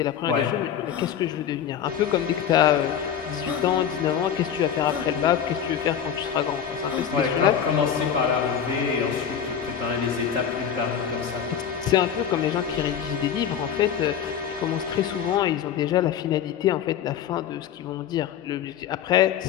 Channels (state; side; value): quieter; right; 8.7 dB